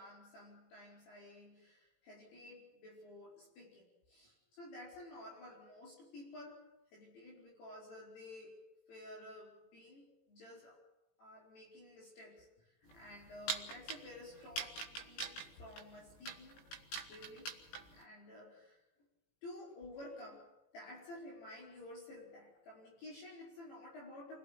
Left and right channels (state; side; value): late; right; 18 ms